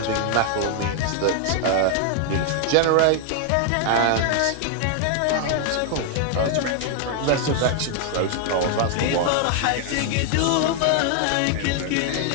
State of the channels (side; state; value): both; different; correlation 0.00